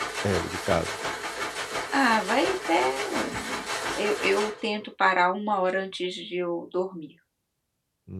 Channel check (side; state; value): both; identical; correlation 1.00